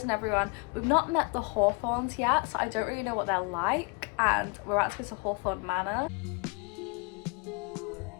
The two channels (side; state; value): right; quieter; 32.8 dB